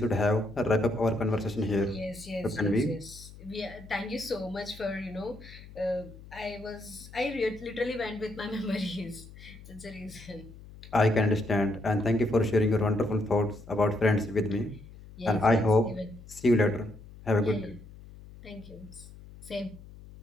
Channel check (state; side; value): noise; left; hum, 18 dB below the sound